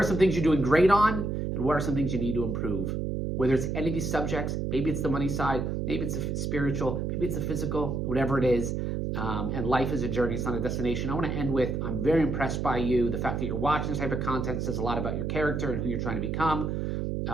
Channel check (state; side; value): noise; right; hum, 1 dB below the sound